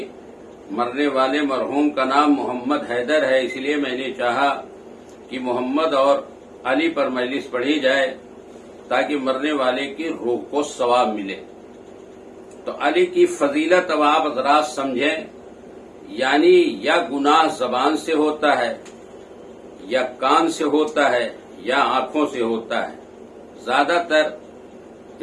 مرنے والے مرحوم کا نام محمد حیدر ہے، اس لیے میں نے چاہا کہ محمد اور علی پر مجلس پڑھی جائے تاکہ مرنے والے کی روح کو ثواب ملے۔ تو علی کی فضیلت اب آپ حضرات سمجھیں، یعنی یا گناہ زبان سے ہوتا ہے، یا کان سے ہوتا ہے، یا آنکھوں سے ہوتا ہے۔ زیادہ تر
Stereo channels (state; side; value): identical; both; correlation 1.00